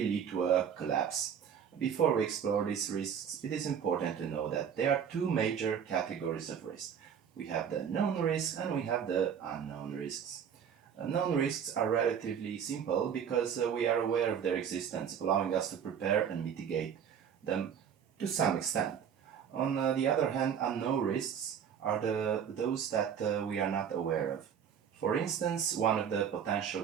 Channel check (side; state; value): left; quieter; 8.0 dB